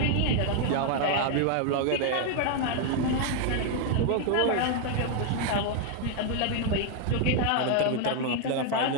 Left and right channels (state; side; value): different; both; correlation 0.01